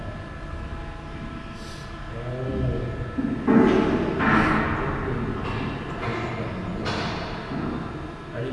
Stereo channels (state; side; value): identical; both; correlation 1.00